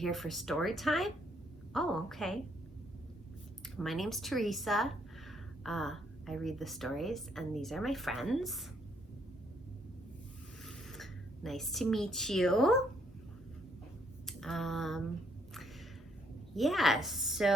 for story time? Oh, okay. My name's Teresa. I read the stories, and these are my friends. Nice to meet you. Yeah,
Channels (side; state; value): both; normal; correlation 0.70